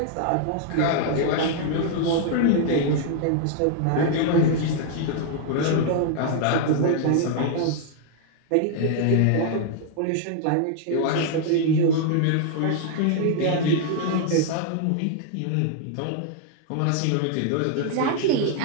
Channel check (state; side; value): different; both; correlation 0.00